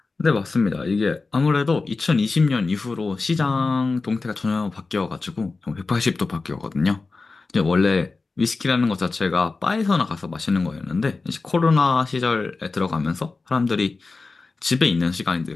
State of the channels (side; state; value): right; quieter; 3.9 dB